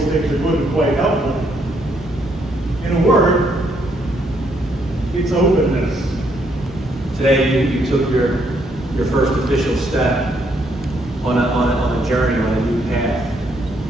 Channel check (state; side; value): normal; both; correlation 0.72